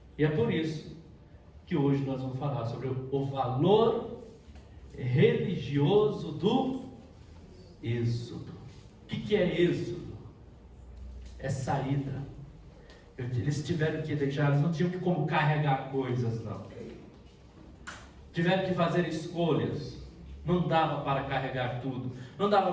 E é por isso que hoje nós vamos falar sobre o valor religioso do êxodo. O que é êxodo? É saída. Eles tiveram que deixar, eles não tinham como carregar coisas, não. Tiveram que fazer escolhas. Não dava para carregar tudo. Não dava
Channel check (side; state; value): both; identical; correlation 1.00